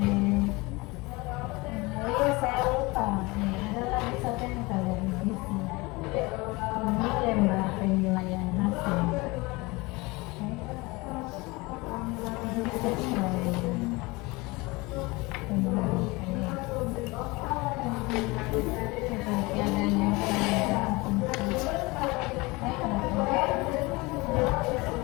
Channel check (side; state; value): right; quieter; 24.0 dB